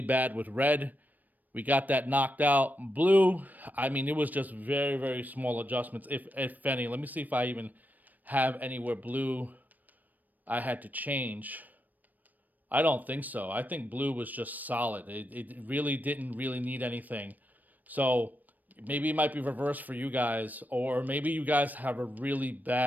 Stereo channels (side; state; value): left; late; 0.084 ms